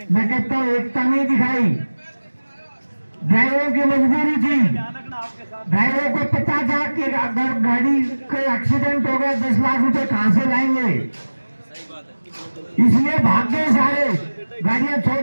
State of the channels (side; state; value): both; inverted; correlation -1.00